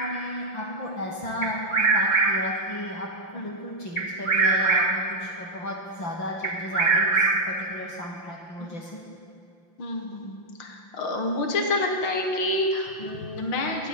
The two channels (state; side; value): late; right; 5.8 ms